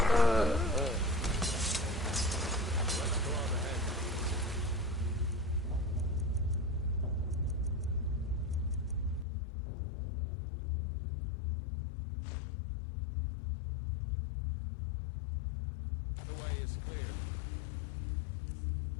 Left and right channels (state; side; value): drops out; right; at 9.2 s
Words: The way is clear.